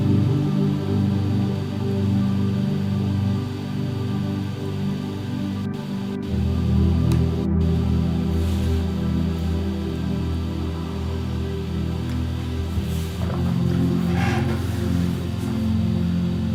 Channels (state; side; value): identical; both; correlation 1.00